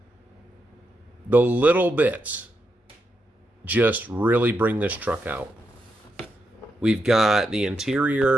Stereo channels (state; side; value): normal; both; correlation 0.84